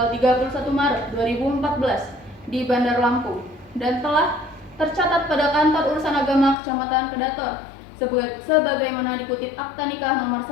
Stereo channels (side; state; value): right; drops out; at 6.6 s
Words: 31 Maret 2014 di Bandar Lampung dan telah tercatat pada Kantor Urusan Agama Kecamatan Kedaton sebagaimana dikutip Akta Nikah nomor